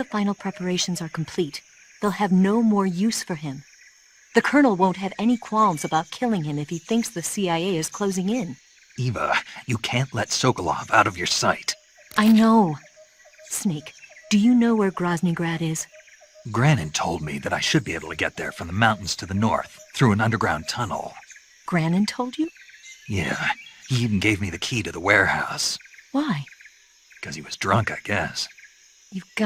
final preparations are complete, they'll have no more use for him. The Colonel won't have any qualms about killing him if he thinks the CIA is closing in. Eva, you can't let Sokolov out of your sight. I know. Snake, do you know where Groznyj Grad is? Graniny told me that I should be able to get there from the mountains to the north, through an underground tunnel. Graniny told you? Yeah, he even gave me the key to the warehouse. Why? Because he was drunk, I guess. You've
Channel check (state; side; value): identical; both; correlation 1.00